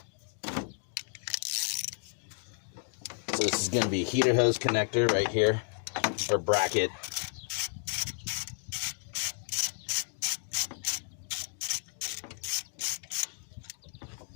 So this is going to be a heater hose connector right here, or bracket.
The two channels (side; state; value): right; silent; 56 dB below the other